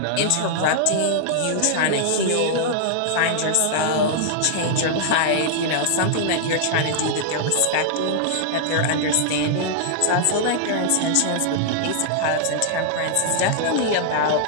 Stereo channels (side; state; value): both; different; correlation -0.01